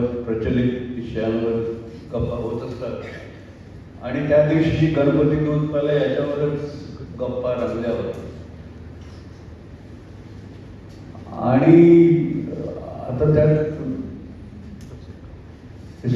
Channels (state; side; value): identical; both; correlation 1.00